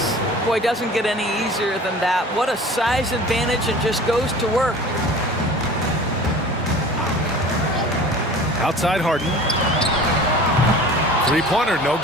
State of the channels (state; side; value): normal; both; correlation 0.41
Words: Boy, doesn't get any easier than that. What a size advantage, and just goes to work. Outside Harden. Three-pointer, no